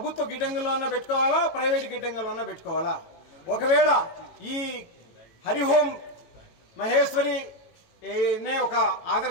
గిడ్డంగుల్లోనే పెట్టుకోవాలా, ప్రైవేట్ గిడ్డంగుల్లోనే పెట్టుకోవాలా? ఒకవేళ ఈ హరిహోం మహేశ్వరి నే ఒక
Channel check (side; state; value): right; late; 18 ms